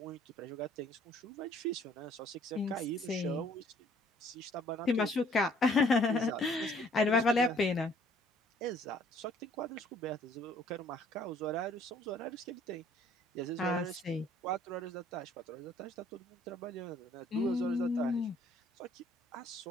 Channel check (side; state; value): both; normal; correlation 0.59